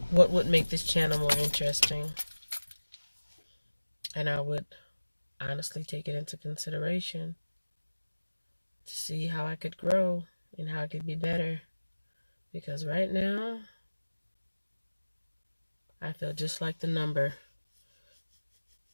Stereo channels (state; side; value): inverted; both; correlation -1.00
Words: What would make this channel more interesting? And I would honestly take it into consideration to see how I could grow and how I could be better. Because right now, I feel just like the number